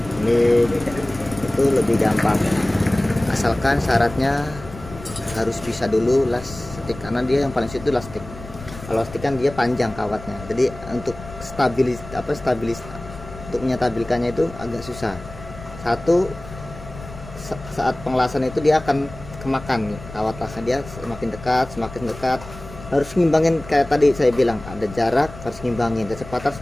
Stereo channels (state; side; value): noise; left; rumble, 15 dB below the sound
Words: ini itu lebih gampang, asalkan syaratnya harus bisa dulu las stick, karena dia yang paling sulit itu las stick. Kalau stick kan dia panjang kawatnya, jadi untuk stabilis untuk menyetabilkannya itu agak susah. Satu, saat pengelasan itu dia akan kemakan kawat lasnya, dia semakin dekat, harus ngimbangin. Kayak tadi saya bilang, ada jarak harus ngimbangin, kecepatan harus